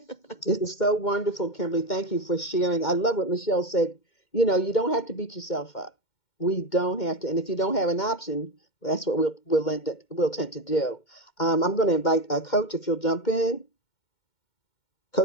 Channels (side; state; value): right; late; 2.1 ms